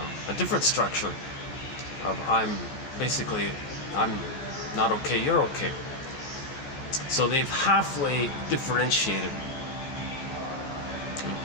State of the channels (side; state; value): right; late; 14 ms